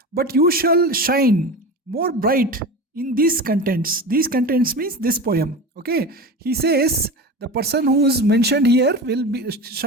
but you shall shine more bright in these contents. These contents means this poem. Okay, he says the person who is mentioned here will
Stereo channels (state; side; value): normal; both; correlation 0.28